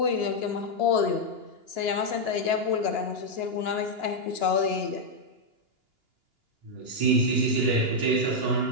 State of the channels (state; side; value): late; left; 2.9 ms